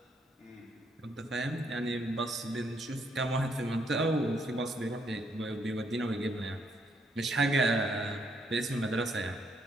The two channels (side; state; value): both; normal; correlation 0.73